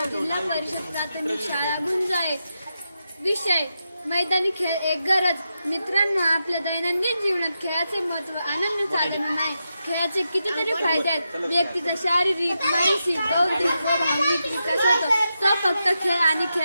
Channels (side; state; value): both; inverted; correlation -0.87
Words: जिल्हा परिषद प्राथमिक शाळा गुंज आहे. विषय मैदानी खेळ एक गरज. मित्रांनो, आपल्या दैनंदिन जीवनात खेळाचे महत्त्व आनंद साधन नाही. खेळाचे कितीतरी फायदे आहेत. व्यक्तीचा शारीरिक, मानसिक, बौद्धिक व भावनिक विकास होतो. तो फक्त खेळ आणि